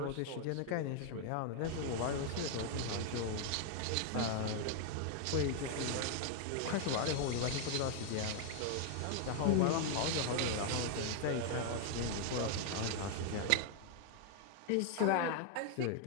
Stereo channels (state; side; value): different; both; correlation 0.00